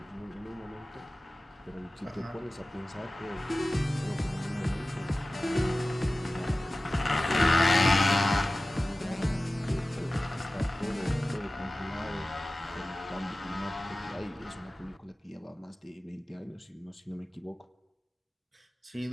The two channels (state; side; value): normal; both; correlation 0.96